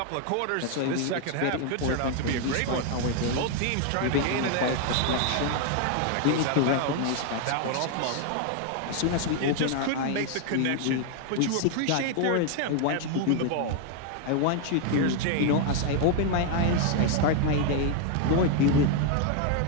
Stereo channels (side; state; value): both; different; correlation 0.00